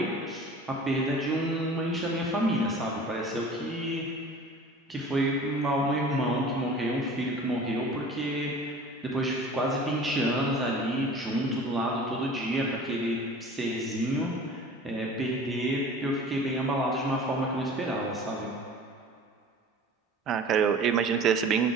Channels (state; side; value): normal; both; correlation 0.43